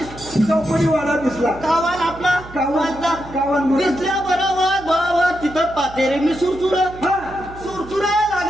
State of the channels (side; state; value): right; noise; hum, 16 dB below the sound